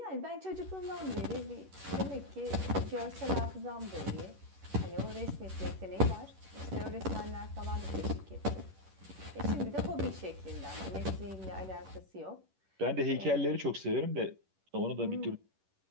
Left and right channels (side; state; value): left; late; 11 ms